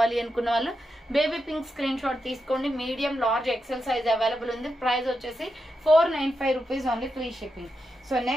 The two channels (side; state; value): both; normal; correlation 0.87